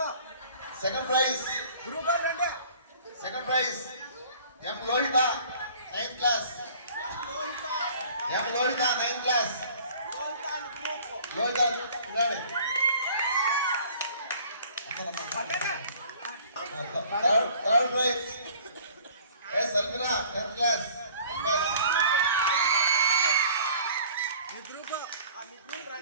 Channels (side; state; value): both; inverted; correlation -0.51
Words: సెకండ్ ప్రైజ్ గ్రూప్ అంటే second prize M Lohitha 9th class. M Lohitha 9th class. Lohitha third prize S Almina 10th class.